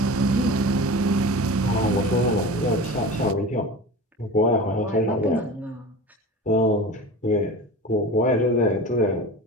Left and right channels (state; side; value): normal; both; correlation 0.33